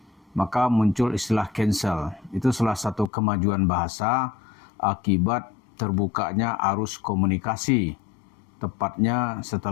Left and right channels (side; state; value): right; drops out; at 3.1 s